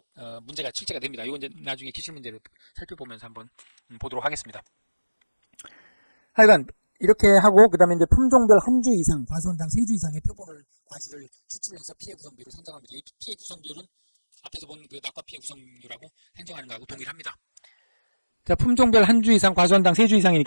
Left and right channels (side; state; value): both; inverted; correlation -1.00